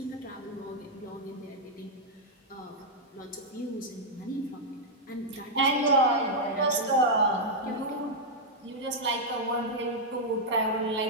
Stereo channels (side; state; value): both; normal; correlation -0.04